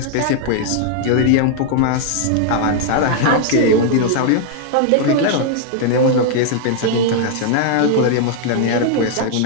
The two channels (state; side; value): different; both; correlation 0.00